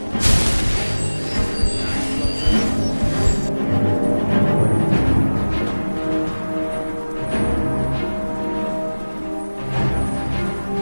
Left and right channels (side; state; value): both; inverted; correlation -1.00